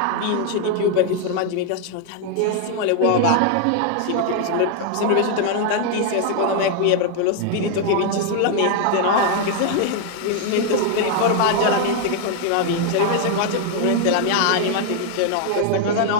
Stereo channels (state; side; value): different; both; correlation 0.00